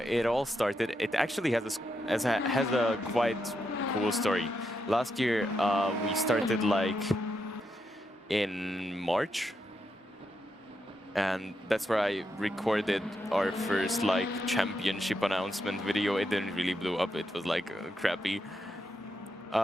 all started. It actually has a quite cool story. Last year, we started like in March, and that's where I recorded our first like championship announcement video. It didn't really blow up. It was like crappy.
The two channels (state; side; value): normal; both; correlation 0.83